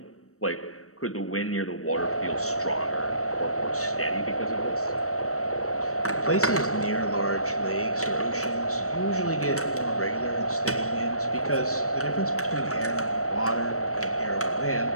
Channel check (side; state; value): right; late; 0.65 ms